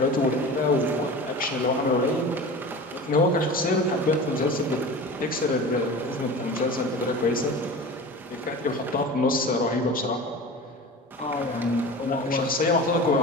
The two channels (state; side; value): normal; both; correlation 0.34